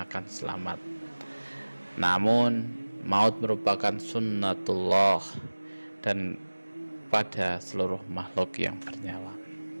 akan selamat. Namun maut merupakan sunnatullah dan pada seluruh makhluk yang bernyawa.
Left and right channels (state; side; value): inverted; both; correlation -1.00